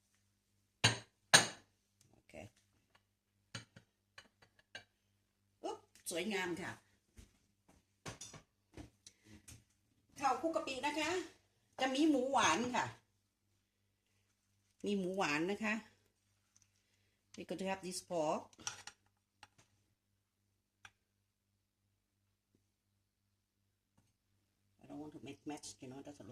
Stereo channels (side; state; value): both; identical; correlation 1.00